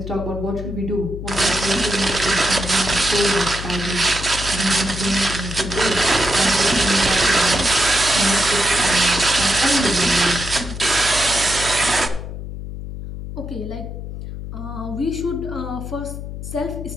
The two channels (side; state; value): left; noise; hum, 8 dB below the sound